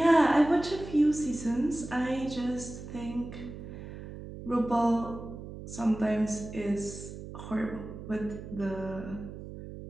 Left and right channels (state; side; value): noise; right; hum, 11 dB below the sound